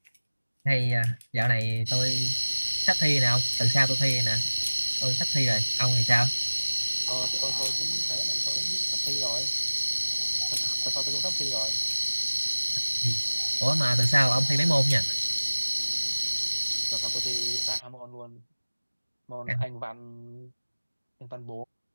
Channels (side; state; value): both; inverted; correlation -1.00